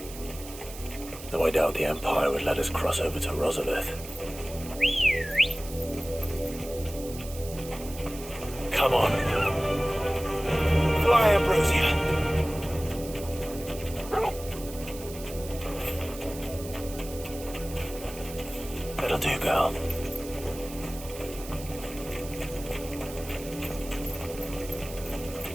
Though I doubt the Empire would let us cross over to Rosabeth. Come on. Fly, Ambrosia. That'll do, girl.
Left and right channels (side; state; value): right; noise; hiss, 14 dB below the sound